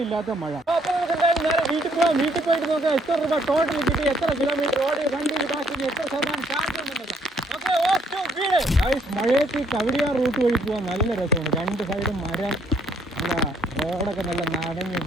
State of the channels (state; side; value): normal; both; correlation 0.67